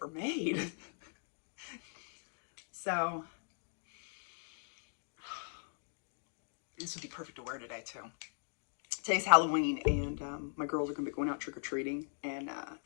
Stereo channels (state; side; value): silent; right; digital silence